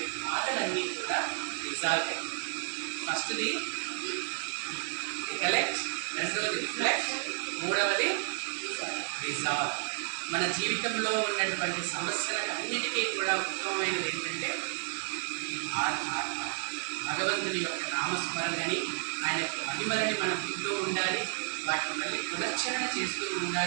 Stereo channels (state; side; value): silent; left; 57 dB below the other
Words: బాధలన్నీ కూడా రిజాల్వ్ అయ్యాయి. ఫస్ట్ది రికలెక్ట్, రెండవది రిఫ్లెక్ట్, మూడవది రిజాల్వ్. మన జీవితంలో ఉన్నటువంటి సమస్యలకు అన్నిటికీ కూడా ఉత్తమమైనది ఏంటంటే భగవంతుని యొక్క నామస్మరణని, ఆయన యొక్క మహిమలని మనం వింటూ ఉండాలి, వాటిని మళ్ళీ పునశ్చరణ చేస్తూ